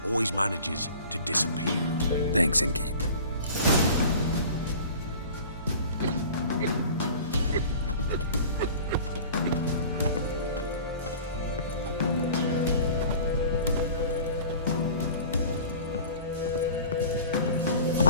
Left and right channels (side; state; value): both; inverted; correlation -0.43